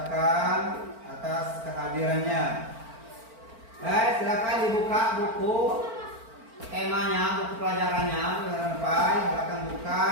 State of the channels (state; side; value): late; left; 4.4 ms